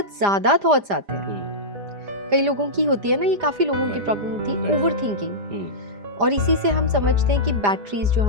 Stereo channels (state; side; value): late; left; 5.0 ms